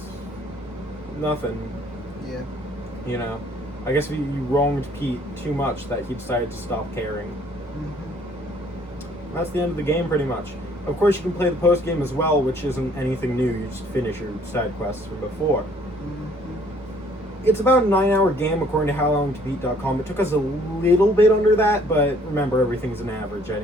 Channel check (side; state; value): both; normal; correlation 0.60